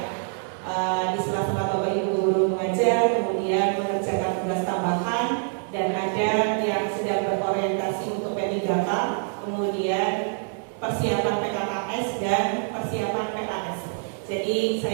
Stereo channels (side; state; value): left; silent; 61 dB below the other